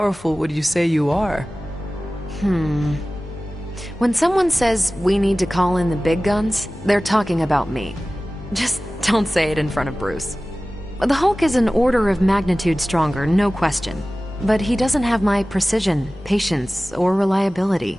would you say you are? When someone says we need to call in the big guns, they're talking about me. Just don't say it in front of Bruce. The Hulk is an order of magnitude stronger, no question. But he doesn't have my precision, patience, or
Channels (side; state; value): both; normal; correlation 0.97